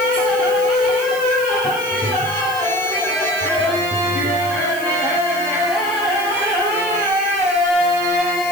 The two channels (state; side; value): noise; left; hiss, 15 dB below the sound